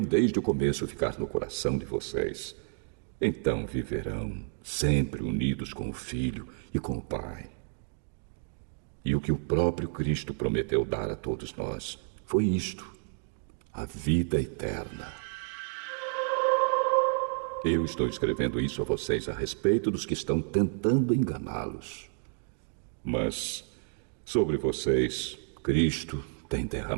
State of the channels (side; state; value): left; silent; 57 dB below the other